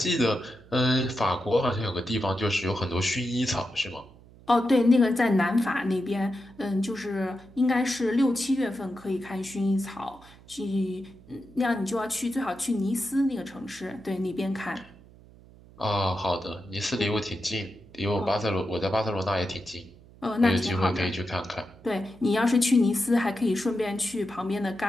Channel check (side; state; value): right; noise; hum, 23 dB below the sound